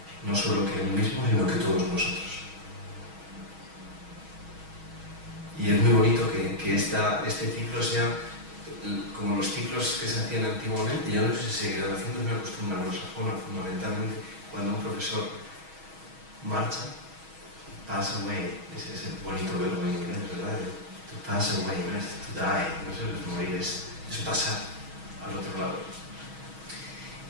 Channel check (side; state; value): left; late; 6.3 ms